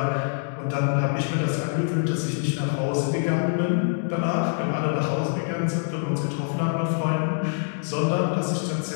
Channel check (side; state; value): right; silent; digital silence